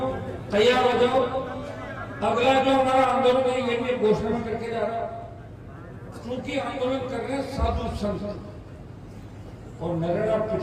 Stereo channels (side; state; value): both; identical; correlation 1.00